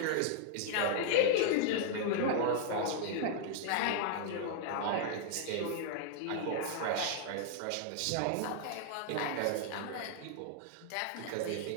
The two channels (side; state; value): both; different; correlation 0.00